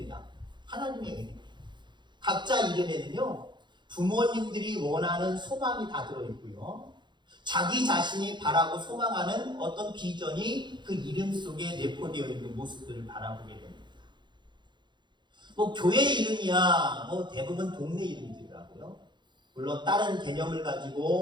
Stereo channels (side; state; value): left; late; 0.22 ms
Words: 하나님의 은혜. 각자 이름에는요 부모님들이 원하는 소망이 다 들어있고요, 자기 자신이 바라고 소망하는 어떤 비전이 그 이름 속에 내포되어 있는 모습들을 바라보게 됩니다. 교회 이름이야 대부분 동네 이름들이라고요. 물론 다른 개념을